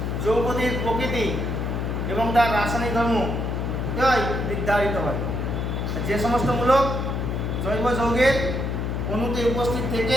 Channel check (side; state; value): left; noise; hum, 1 dB below the sound